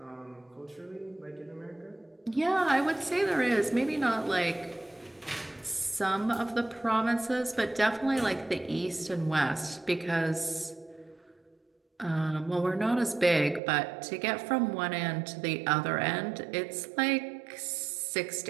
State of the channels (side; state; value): left; drops out; at 13.6 s